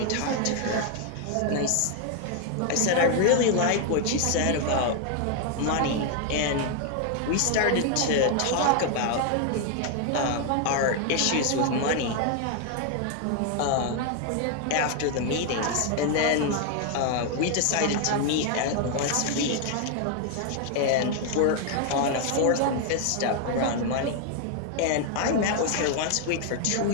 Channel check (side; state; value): both; different; correlation 0.01